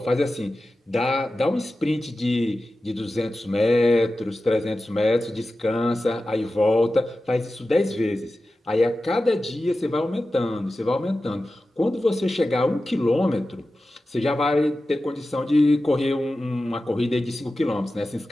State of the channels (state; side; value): normal; both; correlation 0.94